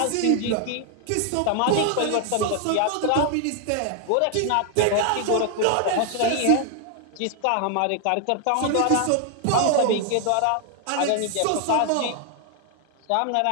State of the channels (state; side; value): different; both; correlation 0.00